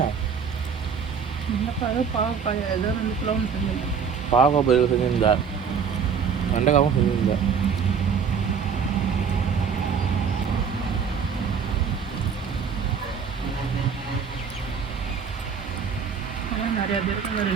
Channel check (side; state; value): left; quieter; 6.5 dB